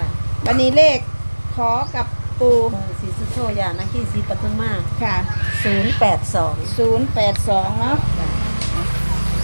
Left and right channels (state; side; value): inverted; both; correlation -1.00